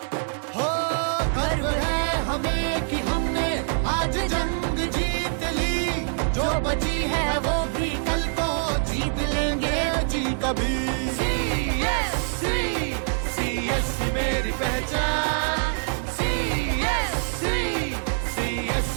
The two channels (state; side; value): silent; left; 56 dB below the other